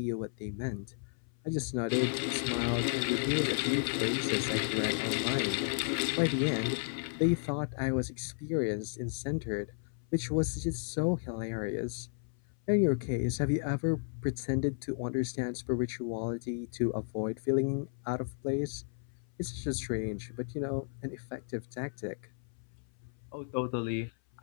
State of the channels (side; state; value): right; silent; 55 dB below the other